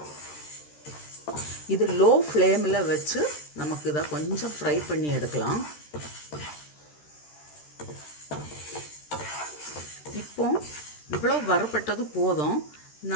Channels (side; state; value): right; late; 13 ms